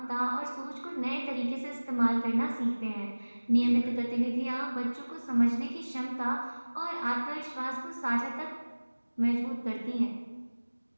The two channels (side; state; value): both; inverted; correlation -1.00